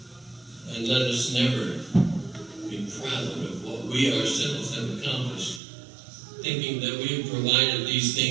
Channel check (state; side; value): drops out; left; at 5.6 s